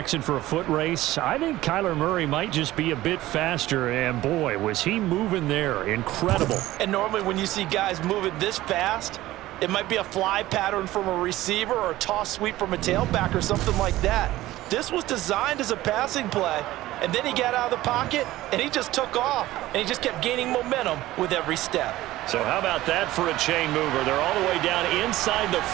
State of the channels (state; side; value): quieter; left; 16.3 dB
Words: for a foot race, I think Kyler Murray might just be a bit faster. And boy, was he moving there. Incredible. And normally when you see guys moving this fast, it might be a fly pattern from a receiver or a toss sweep from a tailback or something like that. This was designed as a passing play, and then he got out of the pocket, and he just took off, and he just kept gaining momentum with every step. So how about that for a chain mover? They're all the way down inside the